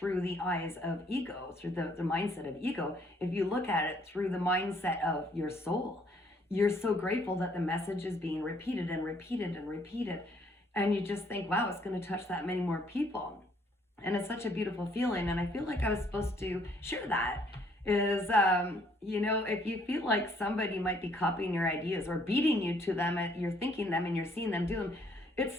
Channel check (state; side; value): normal; both; correlation 0.65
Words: the eyes of ego, through the mindset of ego, if you look at it through the mindset of your soul, you're so grateful that the message is being repeated and repeated and repeated. And you just think, wow, it's going to touch that many more people. And it's such a beautiful feeling. And I feel like I was supposed to share that. Is, if you feel like somebody might be copying your ideas or beating you to them, you're thinking them and you're seeing them do them,